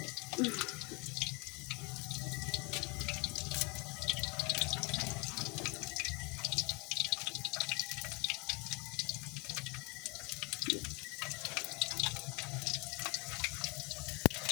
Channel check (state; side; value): quieter; right; 29.4 dB